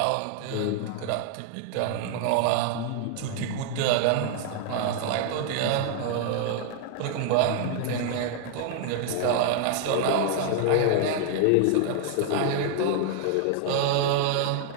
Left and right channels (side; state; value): both; different; correlation 0.00